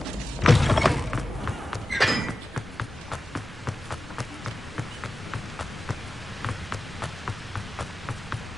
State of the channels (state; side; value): normal; both; correlation 0.94